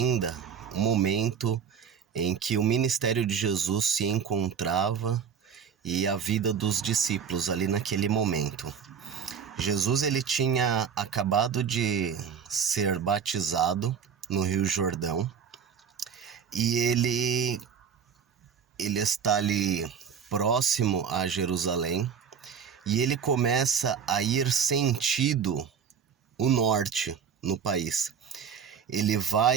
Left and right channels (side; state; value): left; quieter; 7.3 dB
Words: o momento em que o ministério de Jesus se encontrava e a vida dos discípulos ali naquele momento. Jesus ele tinha acabado de ser batizado no Rio Jordão e ele está ali próximo a Jerusalém e ele começa a ir sentido o norte no país. Ele